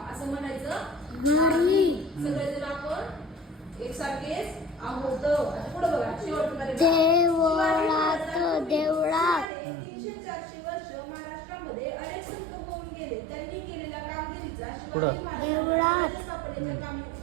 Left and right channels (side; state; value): left; drops out; at 9.5 s